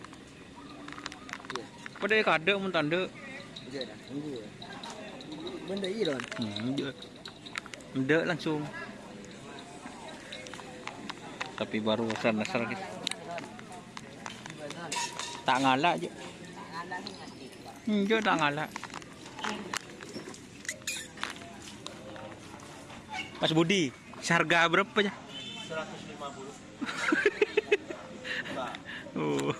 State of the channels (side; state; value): both; identical; correlation 1.00